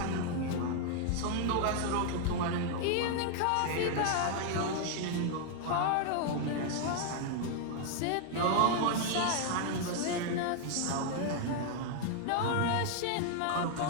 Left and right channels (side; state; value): both; different; correlation 0.00